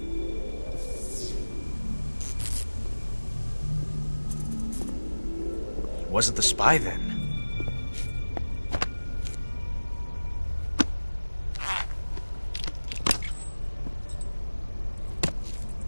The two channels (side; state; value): both; inverted; correlation -1.00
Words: Wasn't the spy then?